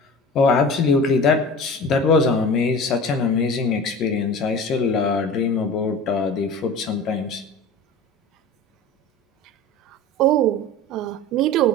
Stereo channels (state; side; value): normal; both; correlation 0.36